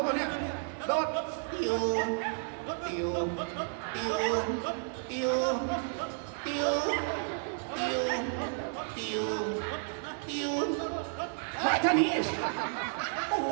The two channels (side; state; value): left; silent; 56 dB below the other